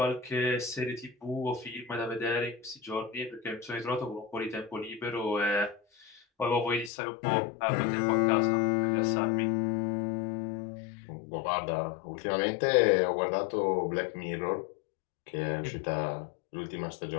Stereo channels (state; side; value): drops out; right; at 6.9 s